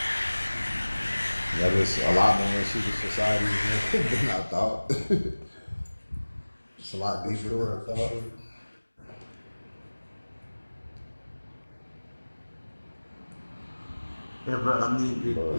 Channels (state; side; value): inverted; both; correlation -1.00